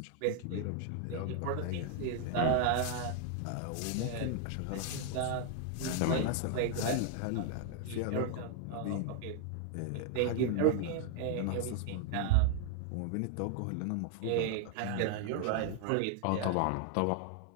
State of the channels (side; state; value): both; different; correlation 0.00